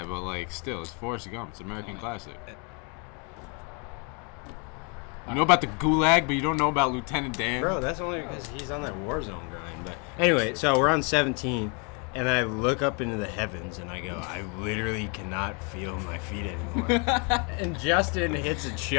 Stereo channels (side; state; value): right; quieter; 34.9 dB